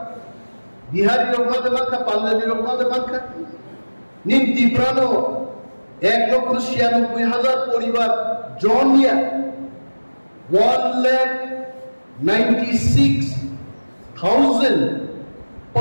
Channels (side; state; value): both; inverted; correlation -1.00